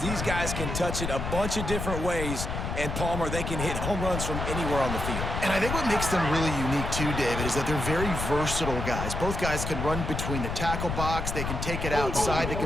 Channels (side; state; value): left; noise; rumble, 3 dB below the sound